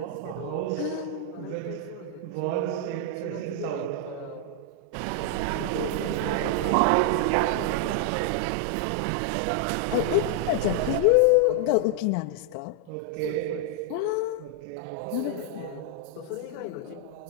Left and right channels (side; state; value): both; different; correlation 0.00